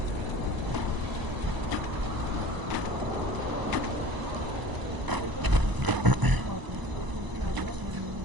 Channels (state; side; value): late; left; 1.0 ms